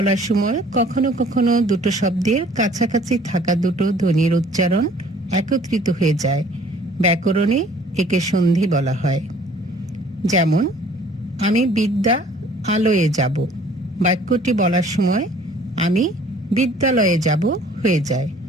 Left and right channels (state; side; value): normal; both; correlation 0.54